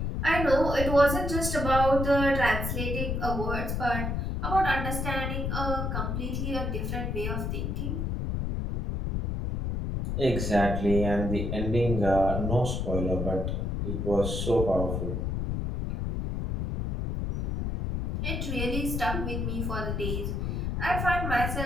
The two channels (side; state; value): left; noise; rumble, 1 dB below the sound